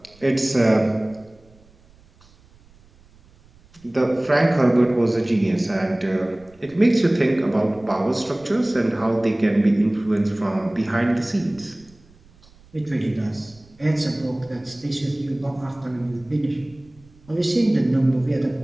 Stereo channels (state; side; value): noise; right; rumble, 28 dB below the sound